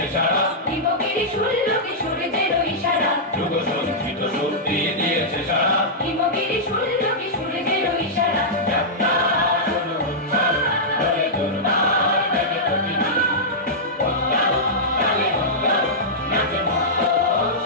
সারা, হিমগিরি শুনল সূর্যের ইশারা, যুগ সঞ্চিত শক্তি দিয়েছে সারা, হিমগিরি শুনল সূর্যের ইশারা। যাত্রা শুরু হচ্ছে, হরে দুর্বার ব্যাগে প্রতিদিন। উৎসব, তালে উৎসব, নাচে মুক্ত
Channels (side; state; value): both; normal; correlation -0.11